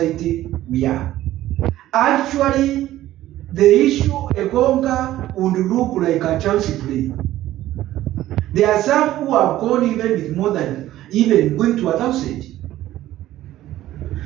we are. Actually, the issue Egonga would look like a chance play. There are some who have gone even with more than even going to 1,000.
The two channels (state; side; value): quieter; left; 14.3 dB